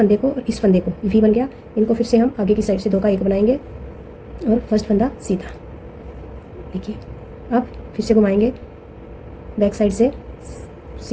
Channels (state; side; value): identical; both; correlation 1.00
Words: को और इस फंदे को वी बन गया, इनको फिर से हम आगे की साइड से 2 का 1 बनाएंगे और फर्स्ट फंदा सीधा। देखिए अब फिर से घुमाएंगे, बैक साइड से